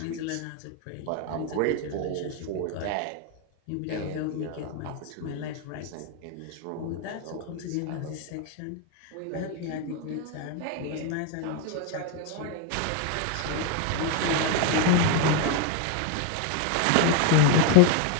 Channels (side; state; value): both; different; correlation 0.01